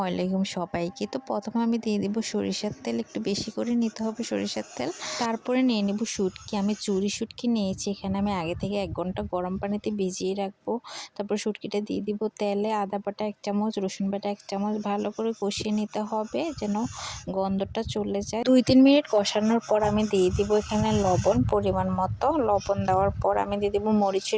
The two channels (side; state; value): both; identical; correlation 1.00